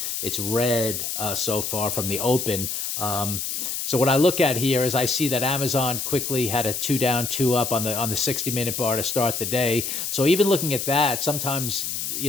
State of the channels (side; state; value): left; noise; hiss, 3 dB below the sound